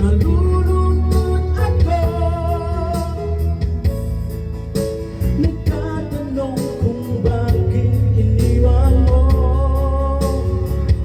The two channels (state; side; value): identical; both; correlation 1.00